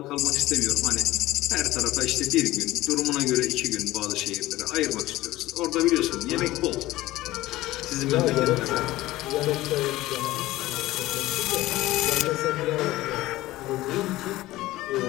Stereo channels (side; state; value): right; quieter; 17.1 dB